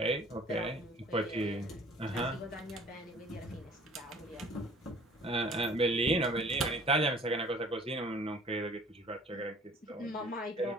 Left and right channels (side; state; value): both; normal; correlation 0.52